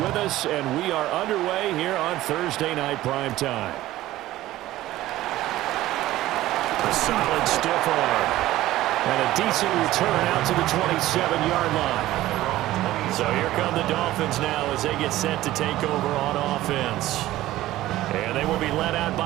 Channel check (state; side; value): quieter; left; 15.6 dB